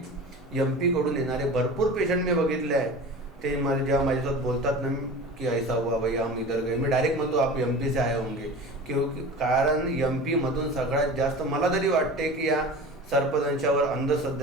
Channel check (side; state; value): both; normal; correlation 0.35